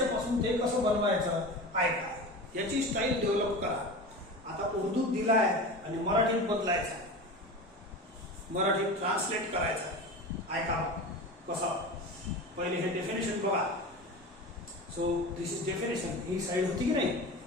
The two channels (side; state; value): both; normal; correlation 0.30